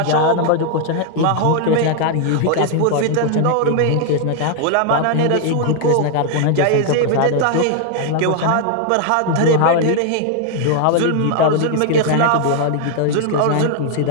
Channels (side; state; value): both; different; correlation 0.00